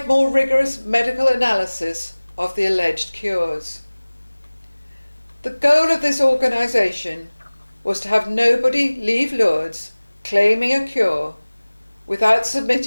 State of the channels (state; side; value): inverted; both; correlation -1.00